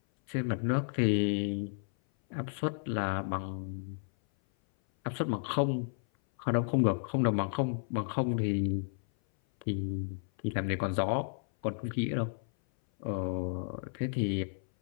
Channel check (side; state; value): right; silent; 56 dB below the other